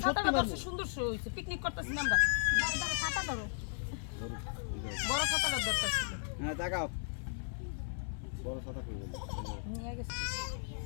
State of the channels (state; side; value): silent; right; 54 dB below the other